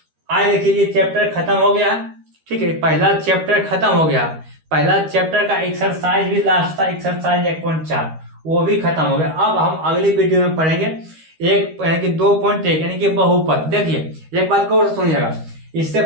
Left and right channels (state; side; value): late; left; 13 ms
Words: आए देखिए ये चैप्टर खत्म हो गया है, ठीक है, पहला चैप्टर खत्म हो गया। पहला चैप्टर का एक्सरसाइज भी लास्ट था, एक्सरसाइज 1.4 वो भी खत्म हो गया। अब हम अगली वीडियो में पढ़ेंगे एक यानी कि 2.1 यानी कि बहुपद। देखिए एक बात को और सुनिएगा, इससे